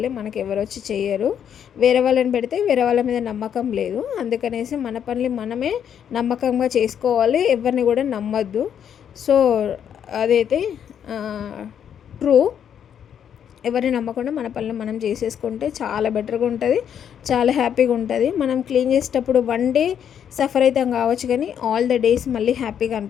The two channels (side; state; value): right; quieter; 8.7 dB